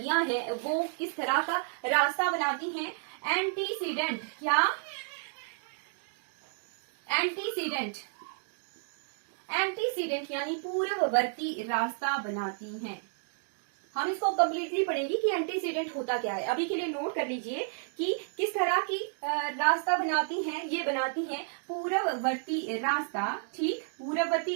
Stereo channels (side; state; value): left; silent; digital silence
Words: हैं वो किस तरह का रास्ता बनाती हैं? एंटीसीडेंट, क्या? एंटीसीडेंट यानी पूर्ववर्ती रास्ता बनाती हैं। हम इसको कंप्लीटली पढ़ेंगे कि एंटीसीडेंट होता क्या है। अभी के लिए नोट कर लीजिए कि किस तरह की रास्ता बनाती हैं। ये बनाती हैं पूर्ववर्ती रास्ता, ठीक, पूर्ववर्ती